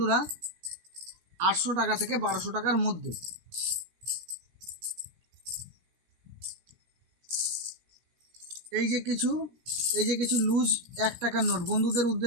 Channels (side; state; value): left; late; 17 ms